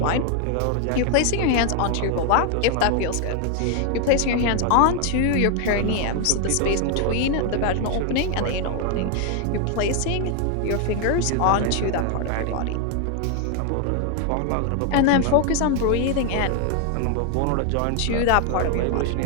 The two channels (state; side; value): different; both; correlation 0.00